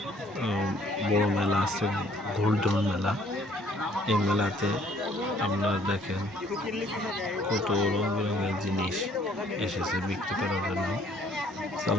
বড় মেলা আছে, গোল্ডন মেলা। এই মেলাতে আপনারা দেখেন কত রং বেরঙের জিনিস এসেছে বিক্রি করার জন্য।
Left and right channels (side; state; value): both; normal; correlation 0.61